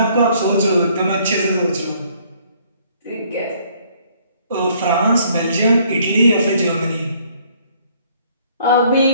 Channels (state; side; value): inverted; both; correlation -0.62